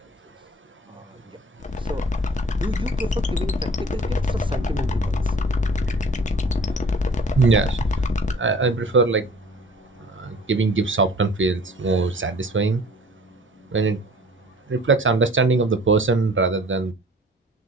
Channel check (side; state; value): both; normal; correlation 0.50